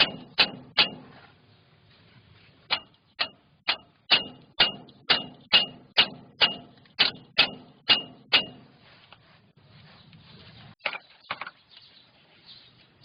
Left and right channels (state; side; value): identical; both; correlation 1.00